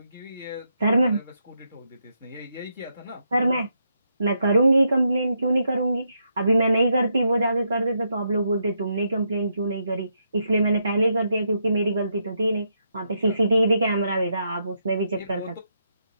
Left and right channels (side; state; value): both; inverted; correlation -0.80